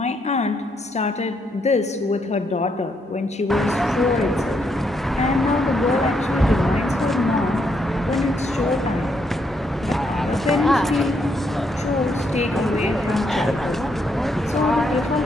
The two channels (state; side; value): normal; both; correlation 0.76